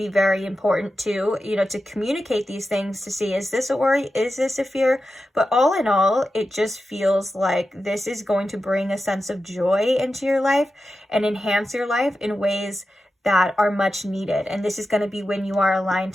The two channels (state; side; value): normal; both; correlation 0.91